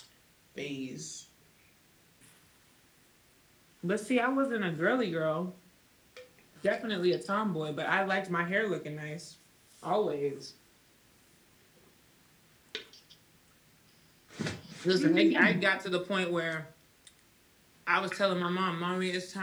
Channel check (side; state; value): both; identical; correlation 1.00